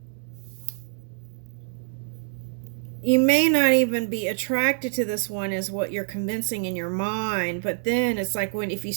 you may not even be attracted to this one as what you're convincing in your mind, but then it's like when if you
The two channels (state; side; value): silent; left; digital silence